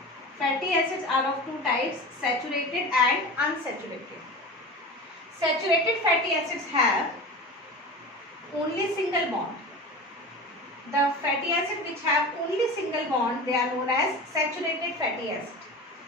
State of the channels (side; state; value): both; normal; correlation 0.31